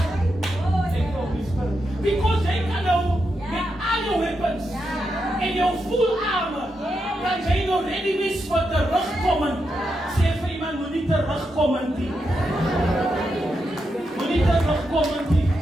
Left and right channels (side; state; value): both; normal; correlation 0.85